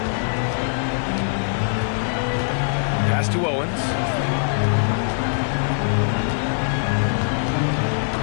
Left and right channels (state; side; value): silent; right; digital silence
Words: Pass to Owens.